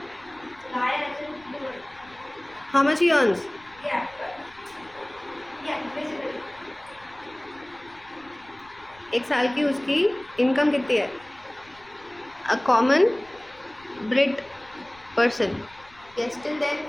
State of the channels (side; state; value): left; noise; rumble, 27 dB below the sound